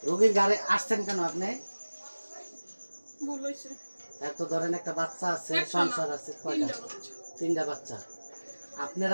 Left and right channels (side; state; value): both; inverted; correlation -1.00